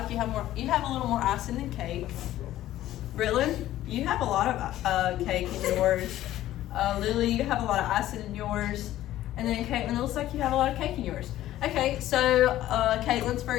a little more icing than cake. Britland, you have a lot of cake in yours. Lily, you have a lot of icing in yours. And then Caitlin, it looks like you have a lot of cake in yours. Okay, so Caitlin's, for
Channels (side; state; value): right; quieter; 13.9 dB